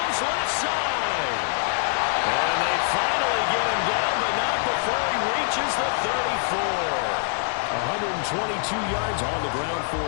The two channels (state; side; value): silent; right; digital silence